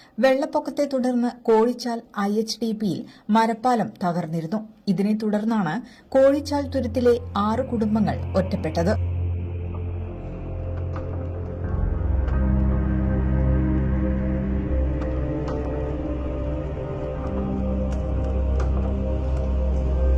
വെള്ളപ്പൊക്കത്തെ തുടർന്ന് കോഴിച്ചാൽ IHDPയിൽ മരപ്പാലം തകർന്നിരുന്നു. ഇതിനെ തുടർന്നാണ് കോഴിച്ചാൽ തുരുത്തിലെ 6 കുടുംബങ്ങൾ ഒറ്റപ്പെട്ടത്.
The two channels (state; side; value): identical; both; correlation 1.00